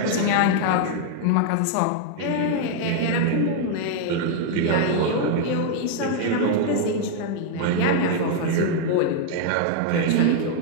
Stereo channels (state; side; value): different; both; correlation 0.00